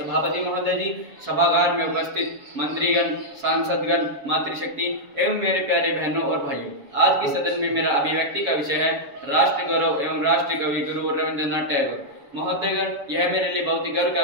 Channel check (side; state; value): left; late; 7.1 ms